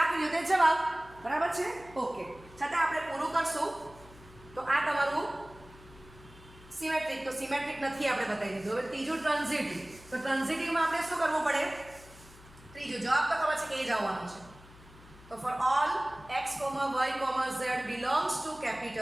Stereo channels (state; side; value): noise; left; hum, 21 dB below the sound